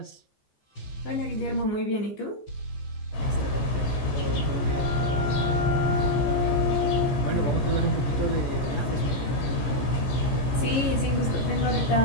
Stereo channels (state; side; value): late; right; 15 ms